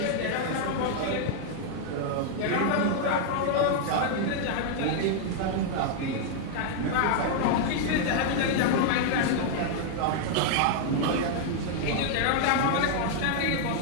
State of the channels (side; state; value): both; different; correlation 0.00